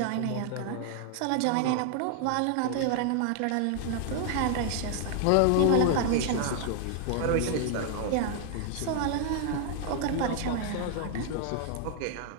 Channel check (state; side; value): different; both; correlation 0.00